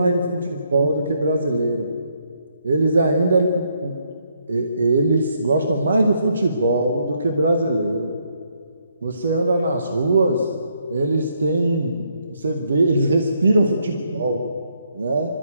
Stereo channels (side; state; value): both; inverted; correlation -0.74